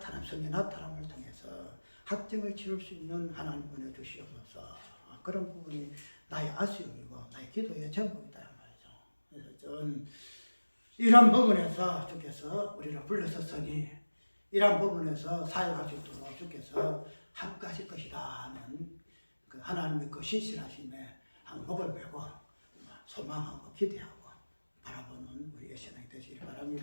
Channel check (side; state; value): both; inverted; correlation -1.00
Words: 나타남을 통해서 확증을 치를 수 있는 하나님 은혜 주시옵소서. 그런 부분이 나의 아쉬움이고 나의 기도의 제목이다 말이죠. 그래서 전 이런 부분에서 주께서 우리를 불러섰으니 이런 부분에서 사역할 수 있도록 주께서 함께하실 것이다 하는 그 하나님의 그 신실하심에 목을 메고 소망하고 기대하고 바라보는 우리의 신앙이 되시길